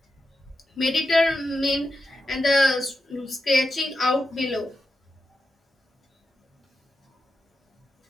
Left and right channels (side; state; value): both; normal; correlation 0.88